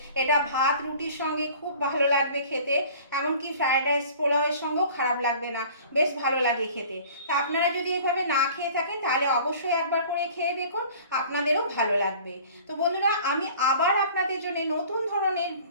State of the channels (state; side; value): inverted; both; correlation -0.47